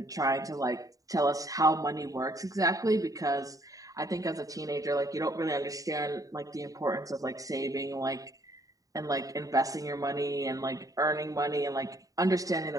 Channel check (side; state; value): left; late; 0.17 ms